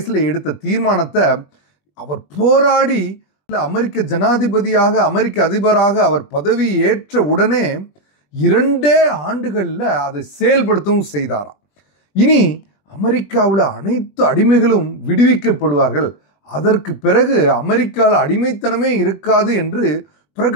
எடுத்த தீர்மானத்தை அவர் போராடி அமெரிக்க ஜனாதிபதியாக, அமெரிக்க அதிபராக அவர் பதவி ஏற்ற உடனே 2 ஆண்டுகளில் அதை செயல்படுத்தவும் செய்தாராம். இனி அமெரிக்காவில் அனைத்து அடிமைகளும் விடுவிக்கப்படுவார்கள், அதற்கு பிறகு அமெரிக்காவில் அடிமைத்தனமே இருக்காது என்று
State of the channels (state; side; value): late; right; 21 ms